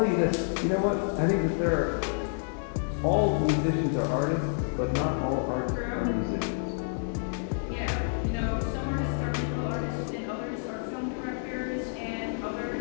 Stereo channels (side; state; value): right; silent; digital silence